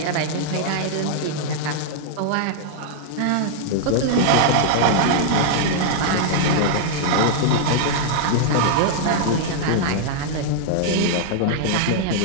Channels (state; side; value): different; both; correlation -0.01